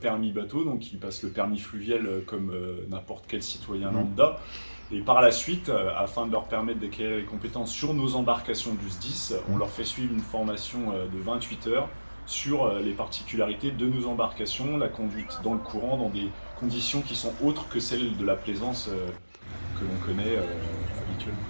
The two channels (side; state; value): both; inverted; correlation -1.00